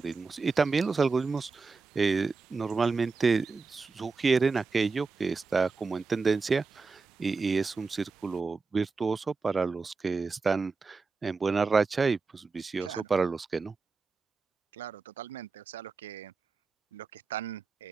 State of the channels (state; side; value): quieter; left; 4.4 dB